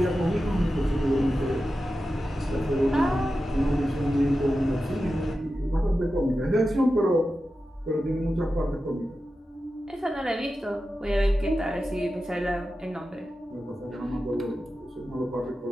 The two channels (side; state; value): both; normal; correlation 0.92